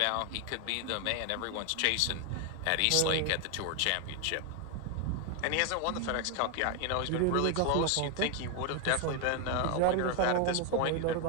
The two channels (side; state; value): both; different; correlation 0.01